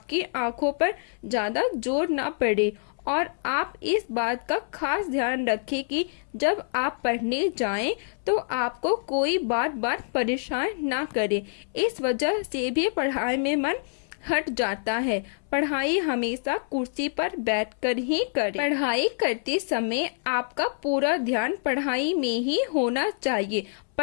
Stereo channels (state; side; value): silent; right; 61 dB below the other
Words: आंखों पर ज़्यादा जोर ना पड़े। और आप इस बात का खास ध्यान रखें कि जब आप पढ़ने जाएं तो आपको कोई बार बार परेशान ना करे। इस वजह से भी पढ़ाई में मन हट जाता है। पढ़ाई हमेशा कुर्सी पर बैठकर ही करें। पढ़ाई करते समय आपका पूरा ध्यान पढ़ाई में ही होना चाहिए।